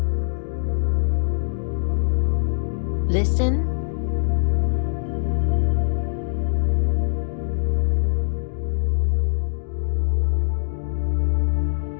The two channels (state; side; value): silent; right; digital silence